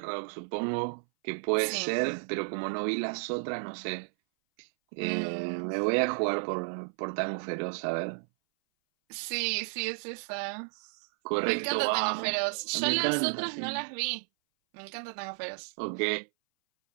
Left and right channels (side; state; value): left; silent; 56 dB below the other